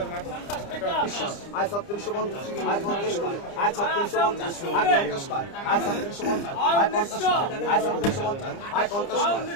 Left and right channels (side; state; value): right; late; 30 ms